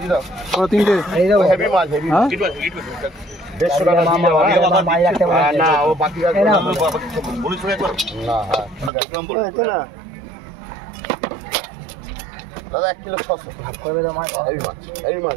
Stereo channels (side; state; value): left; drops out; at 8.9 s